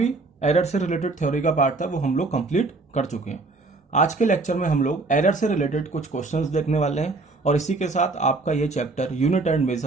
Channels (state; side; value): quieter; left; 3.5 dB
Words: error से related theory का part था वो हम लोग कंप्लीट कर चुके हैं. आज के लेक्चर में हम लोग एरर से रिलेटेड कुछ क्वेश्चंस देखने वाले हैं और इसी के साथ आपका ये chapter unit and